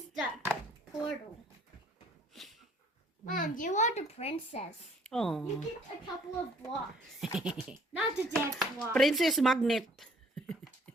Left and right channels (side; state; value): both; normal; correlation 0.59